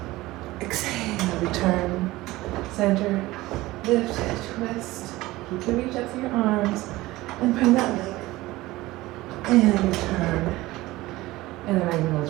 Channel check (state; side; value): quieter; left; 18.6 dB